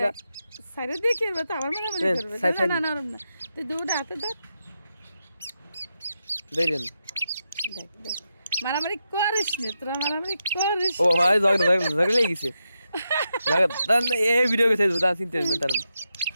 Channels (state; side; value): inverted; both; correlation -0.86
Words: সাইরে দেখি এবার তো আবার মারামারি করবে না না না তুই দুটো হাতে দেখ দেখেন দেখ দেখ মারামারি করিস নি তোরা মারামারি করিস ও ভাই ঝগড়া লেগে গেছে এই ভিডিও কে ছেড়ে দাও চিন্তা না তার